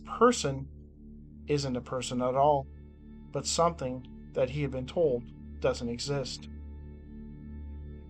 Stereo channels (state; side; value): identical; both; correlation 1.00